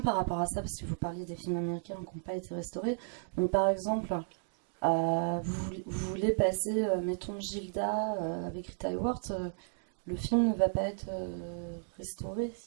par rapport à ça, parce que vous parliez des films américains qui n'ont pas été restaurés. Donc, par exemple, vous voulez passer, mettons, Gilda avec Rita Hayworth, le film ne va pas être restauré?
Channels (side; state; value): left; silent; digital silence